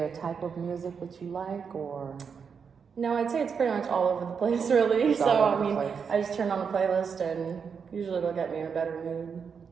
a type of music that you like, or? No, I'd say it's pretty much all over the place, really. It's all over I the mean, place. I just turn on a playlist and usually it'll get me in a better mood.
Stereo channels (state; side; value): quieter; left; 6.3 dB